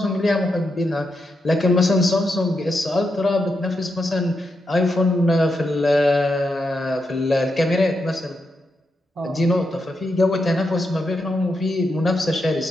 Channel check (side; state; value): both; normal; correlation 0.84